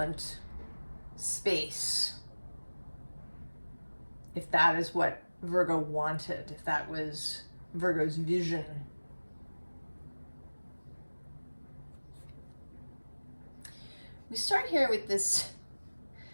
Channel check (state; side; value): inverted; both; correlation -1.00